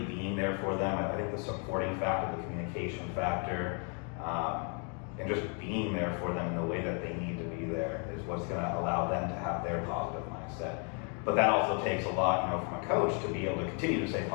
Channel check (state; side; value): quieter; right; 38.5 dB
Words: being there for them. I think the supporting factor, the communication factor, and just being there for them in the way that they need to be there is what's going to allow them to have their positive mindset. But that also takes a lot, from a coach to be able to continue to stay